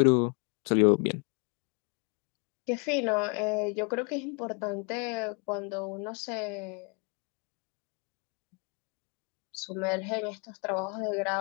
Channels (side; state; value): right; quieter; 36.0 dB